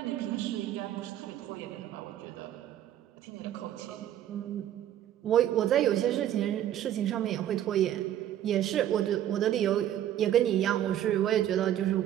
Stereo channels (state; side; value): quieter; left; 11.5 dB